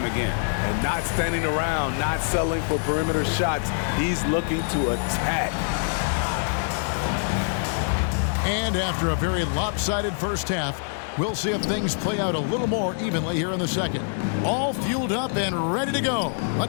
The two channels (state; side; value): silent; right; digital silence